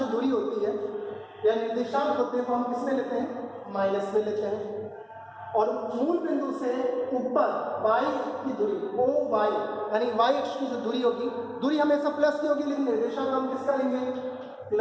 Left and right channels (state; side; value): identical; both; correlation 1.00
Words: दूरी होती है या निर्देशांक होते हैं वो हम किसमें लेते हैं? माइनस में लेते हैं। और मूल बिंदु से ऊपर y की दूरी ओ y यानी y अक्ष की जो दूरी होगी, दूरी हमेशा प्लस की होगी, लेकिन निर्देशांक हम किसका लेंगे?